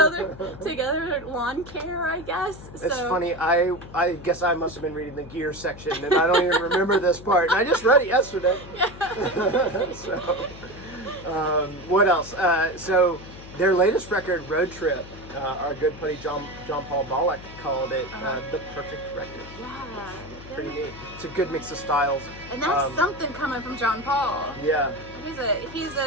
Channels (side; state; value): left; noise; hum, 16 dB below the sound